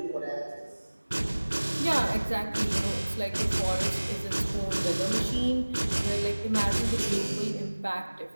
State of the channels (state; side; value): inverted; both; correlation -1.00